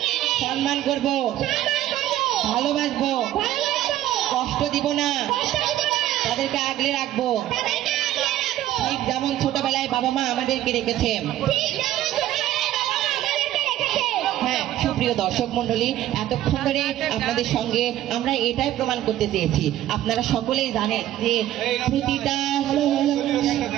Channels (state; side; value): quieter; left; 13.4 dB